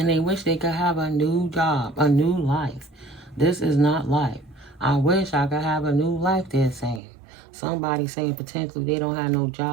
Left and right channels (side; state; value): left; drops out; at 7.0 s